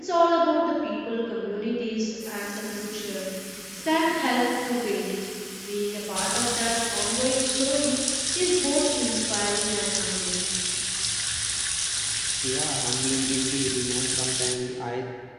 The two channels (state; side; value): identical; both; correlation 1.00